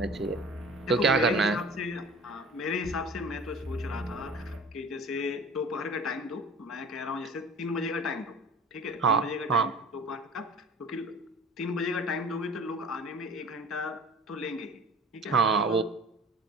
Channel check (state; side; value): normal; both; correlation 0.41